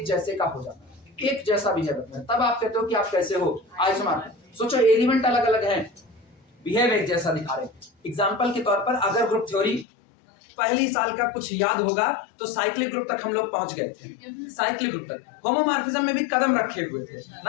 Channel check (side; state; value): right; drops out; at 9.9 s